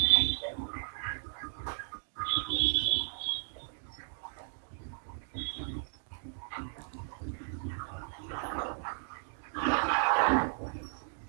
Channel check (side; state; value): left; silent; digital silence